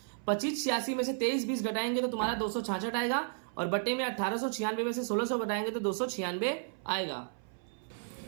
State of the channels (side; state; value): left; silent; 56 dB below the other